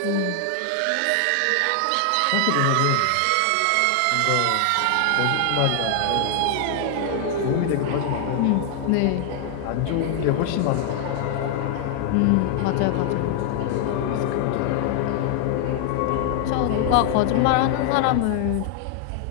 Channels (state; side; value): different; both; correlation 0.00